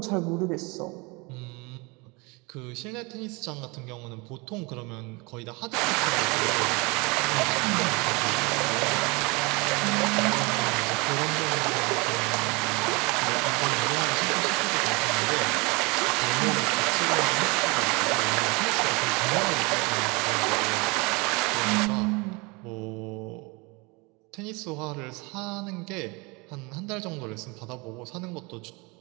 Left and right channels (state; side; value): quieter; left; 27.3 dB